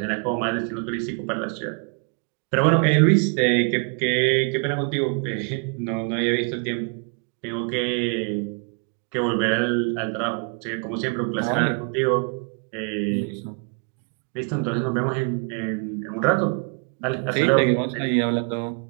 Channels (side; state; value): left; quieter; 38.1 dB